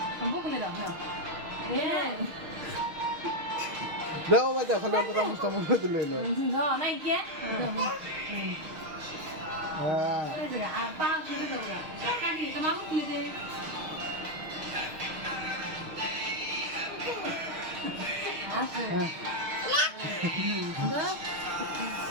বুকলে দাও না দাও বাজা খালি অল্প চামচটা মনে দিল এলো নাই কে হ্যাঁ পা খেতে দাও না কাটি তোমার বুকলে দে আছে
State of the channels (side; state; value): left; late; 6.5 ms